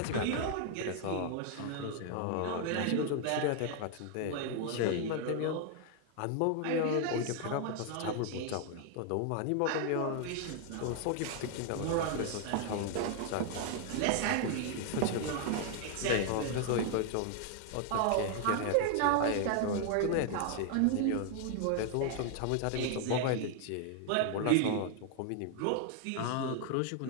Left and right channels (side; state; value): both; different; correlation 0.00